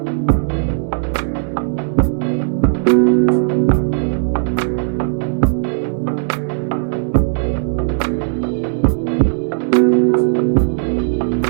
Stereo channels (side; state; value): left; silent; digital silence